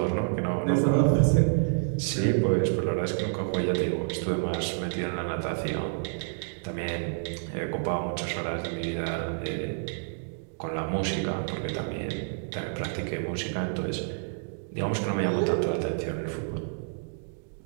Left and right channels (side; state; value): left; silent; digital silence